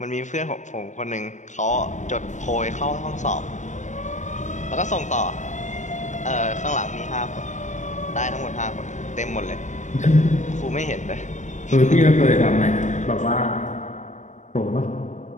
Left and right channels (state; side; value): late; right; 0.35 ms